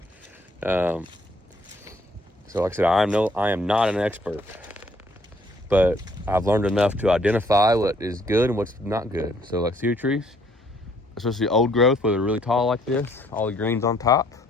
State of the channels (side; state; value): both; normal; correlation 0.64